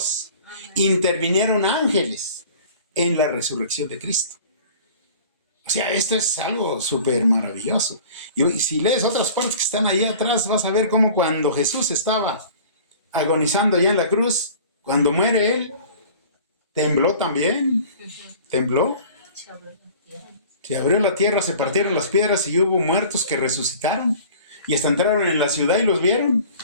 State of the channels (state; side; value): inverted; both; correlation -0.45